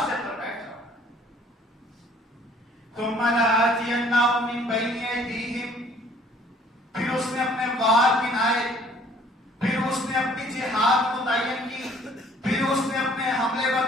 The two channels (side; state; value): both; normal; correlation 0.57